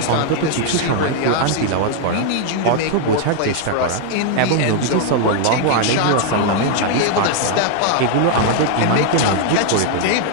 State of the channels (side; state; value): both; different; correlation 0.00